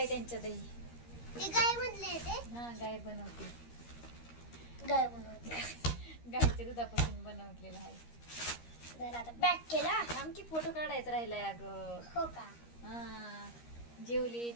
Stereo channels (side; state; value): right; late; 13 ms